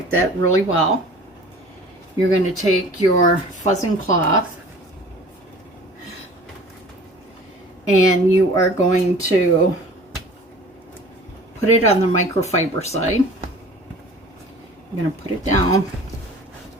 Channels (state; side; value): normal; both; correlation 0.45